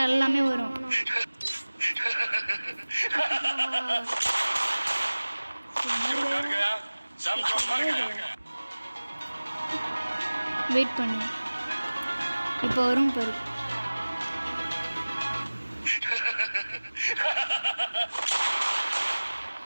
எல்லாமே வரும். வெயிட் பண்ணு, இப்போ வரும் பாரு.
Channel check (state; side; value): inverted; both; correlation -1.00